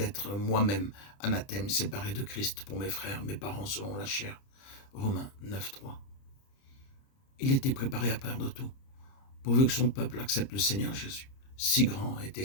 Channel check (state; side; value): late; right; 30 ms